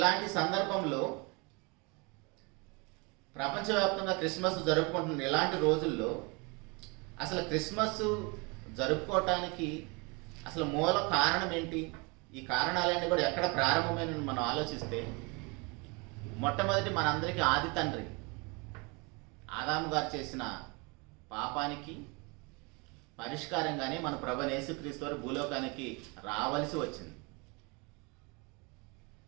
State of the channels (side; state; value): left; quieter; 29.5 dB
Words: సందర్భంలో ప్రపంచవ్యాప్తంగా క్రిస్మస్ జరుపుకుంటున్న ఇలాంటి రోజుల్లో అసలు క్రిస్మస్ జరుపుకోవటానికి అసలు మూల కారణం ఏంటి, ఈ కారణాలన్నీ కూడా ఎక్కడ ప్రారంభమైన మనం ఆలోచిస్తే, మొట్టమొదటి మనందరికీ ఆది తండ్రి ఆదాము గారు చేసిన పాపానికి పరిష్కారంగానే మన ప్రభువైన యేసుక్రీస్తు వారు భూలోకానికి రావలసి వచ్చింది.